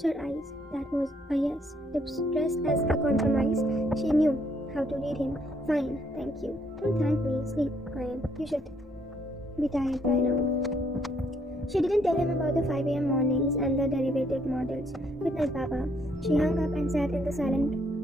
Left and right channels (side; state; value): both; normal; correlation 0.69